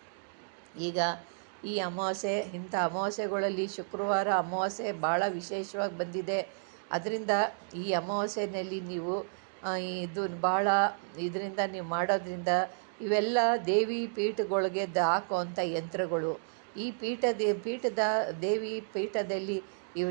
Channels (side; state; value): left; silent; digital silence